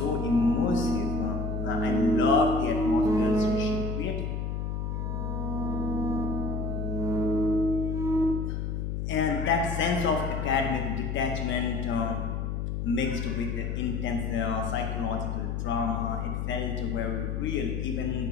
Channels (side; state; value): left; noise; hum, 2 dB below the sound